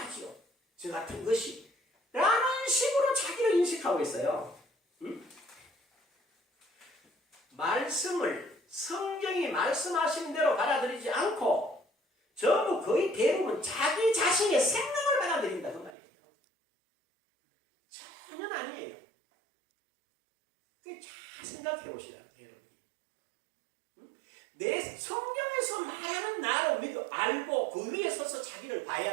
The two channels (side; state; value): left; drops out; at 15.9 s